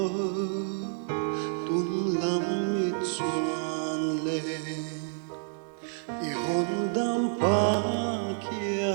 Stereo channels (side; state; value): left; silent; digital silence